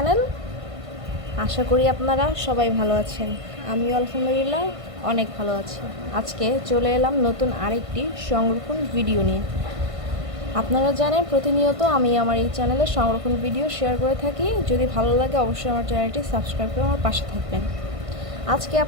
আশা করি আপনারা সবাই ভালো আছেন। আমিও আলহামদুলিল্লাহ অনেক ভালো আছি। আজকে চলে এলাম নতুন আরেকটি সংরক্ষণ ভিডিও নিয়ে। আপনারা জানেন প্রতিনিয়ত আমি আমার এই চ্যানেলে সংরক্ষণ ভিডিও শেয়ার করে থাকি। যদি ভালো লাগে অবশ্যই আমার চ্যানেলটি সাবস্ক্রাইব করে আমার পাশে থাকবেন। আজকে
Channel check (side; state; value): left; late; 1.5 ms